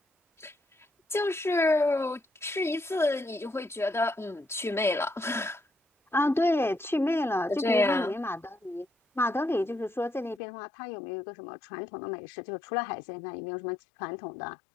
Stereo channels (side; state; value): right; drops out; at 10.4 s